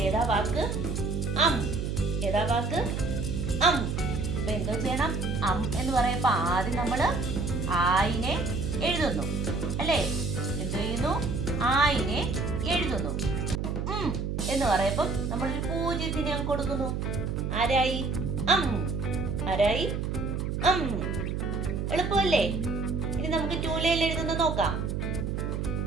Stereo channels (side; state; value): right; noise; hum, 2 dB below the sound